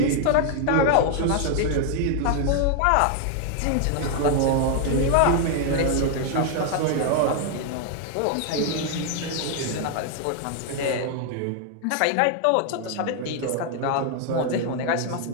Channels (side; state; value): both; different; correlation 0.00